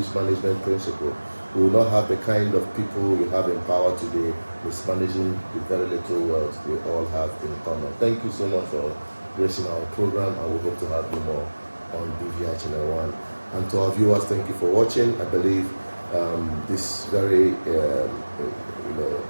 management principles. We will not have the kind of people we have in power today mismanaging the very little wealth we all have in common. Thank you so much for gracing our program, and we hope to have you more on BVI Channel 1. And to our viewers, thank you for watching. I believe this very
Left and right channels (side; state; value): both; inverted; correlation -1.00